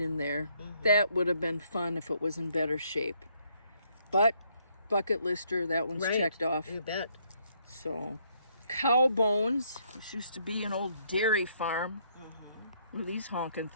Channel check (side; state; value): both; inverted; correlation -0.69